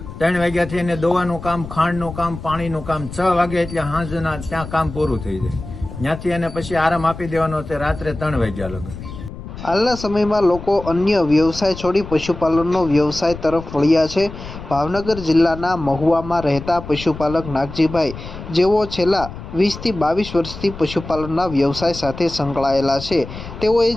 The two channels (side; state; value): left; noise; rumble, 12 dB below the sound